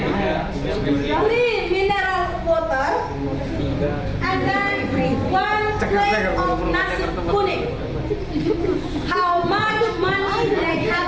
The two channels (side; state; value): both; identical; correlation 1.00